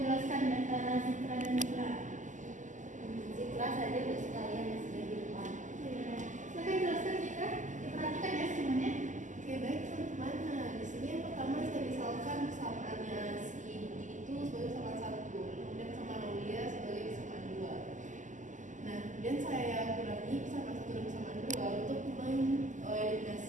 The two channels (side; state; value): left; late; 0.37 ms